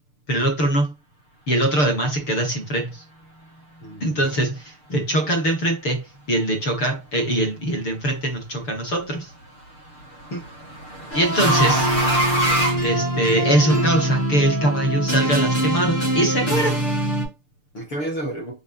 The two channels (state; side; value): late; right; 6.7 ms